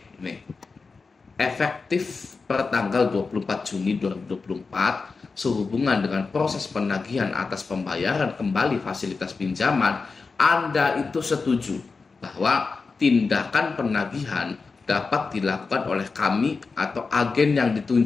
Nih. Efektif per tanggal 24 Juni 2024 sehubungan dengan proses penagihan atas pembayaran kembali fasilitas pinjaman, Anda itu setuju bahwa tindakan penagihan dapat dilakukan oleh kami atau agen yang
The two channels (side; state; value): right; quieter; 4.4 dB